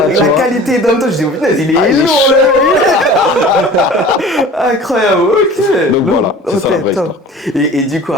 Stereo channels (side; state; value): both; normal; correlation 0.42